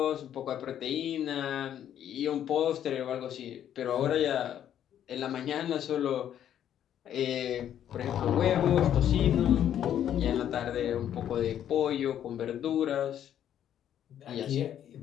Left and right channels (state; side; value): quieter; right; 10.3 dB